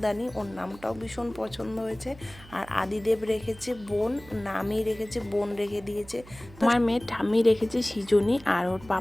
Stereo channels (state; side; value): noise; right; hum, 20 dB below the sound